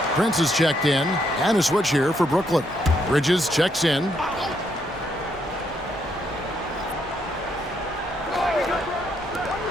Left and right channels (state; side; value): noise; left; hum, 27 dB below the sound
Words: Prince is checked in, and a switch here for Brooklyn. Bridges checks in.